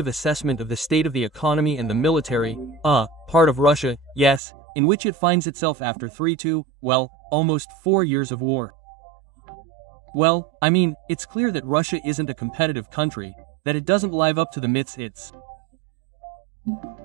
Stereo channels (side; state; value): left; drops out; at 4.4 s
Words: assessment of the state of the economy and the military, part of Russia, yes, in which it finds itself after almost 4 years of war. Well, I mean, it's clear that Russia isn't a competitive country, that it doesn't live up to the myths it's